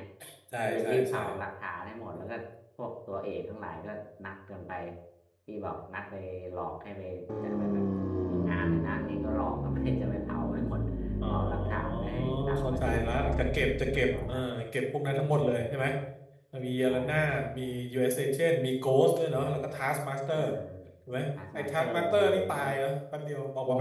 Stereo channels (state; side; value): identical; both; correlation 1.00